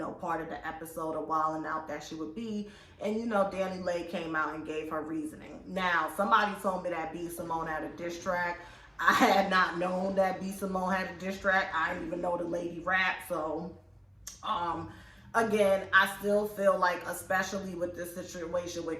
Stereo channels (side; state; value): both; identical; correlation 1.00